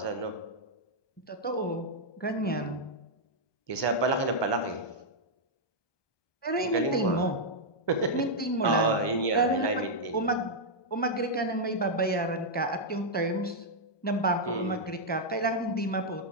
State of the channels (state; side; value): late; right; 1.2 ms